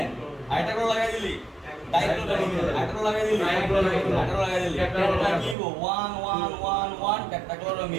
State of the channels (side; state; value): left; drops out; at 5.6 s